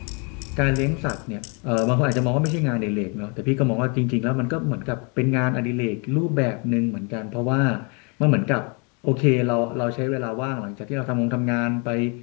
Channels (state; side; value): quieter; right; 34.3 dB